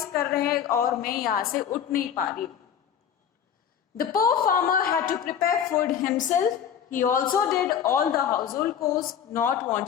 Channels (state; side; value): quieter; right; 8.5 dB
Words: कर रहे हैं और मैं यहाँ से उठ नहीं पा रही. The poor farmer had to prepare food himself. He also did all the household chores, not